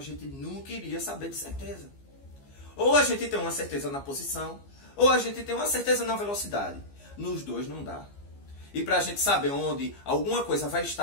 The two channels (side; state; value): right; late; 15 ms